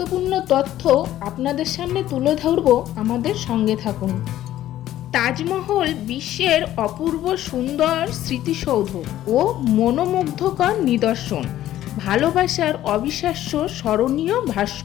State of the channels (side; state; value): right; quieter; 13.2 dB